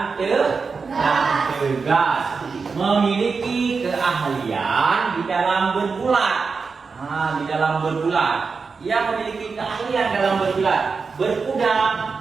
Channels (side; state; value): left; quieter; 4.9 dB